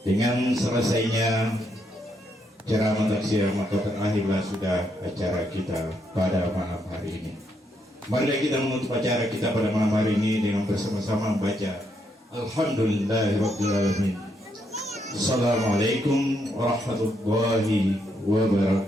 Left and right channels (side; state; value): both; normal; correlation 0.77